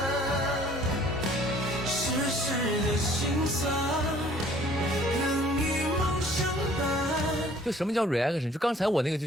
世事的辛酸。就什么叫 reaction？ 就刚才我那个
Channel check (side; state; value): both; normal; correlation 0.56